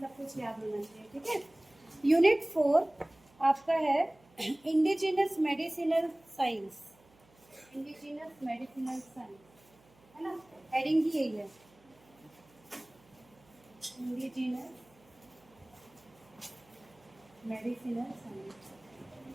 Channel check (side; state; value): right; noise; hum, 29 dB below the sound